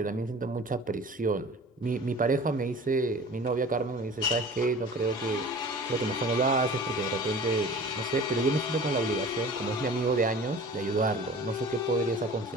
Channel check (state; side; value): normal; both; correlation 0.41